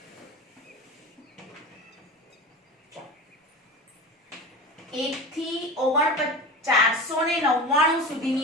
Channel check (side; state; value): both; normal; correlation 0.31